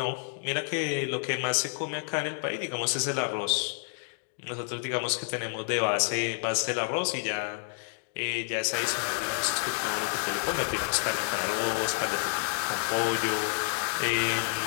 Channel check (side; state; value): right; silent; 58 dB below the other